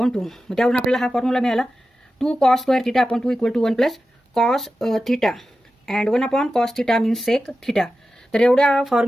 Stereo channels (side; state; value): both; normal; correlation 0.93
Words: 2. मग त्यावरून आपल्याला हा फॉर्म्युला मिळाला 2 cos square theta upon 2 equal to 1 plus cos theta and 1 upon cos theta means sec theta. तर एवढ्या